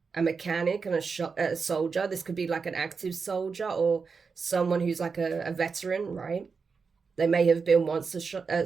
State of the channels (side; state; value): left; quieter; 5.2 dB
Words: A mechanic and a soldier. This could be like an active soldier or someone who's like a veteran, right? They may have been once